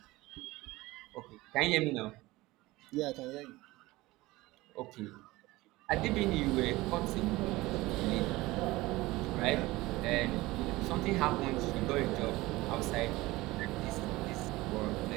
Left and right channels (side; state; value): left; quieter; 19.8 dB